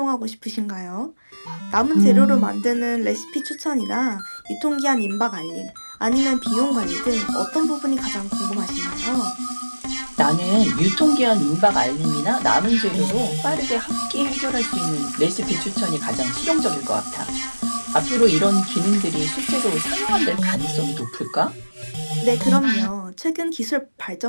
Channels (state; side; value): inverted; both; correlation -1.00